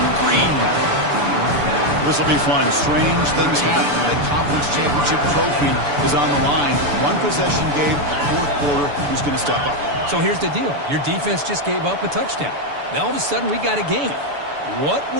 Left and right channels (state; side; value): late; left; 6.9 ms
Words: Green. This will be fun. Strange things happen when a conference championship trophy is on the line. One possession game, fourth quarter, who's going to step up? So here's the deal. Your defense just gave up a touchdown. Now all of a sudden we got a game. What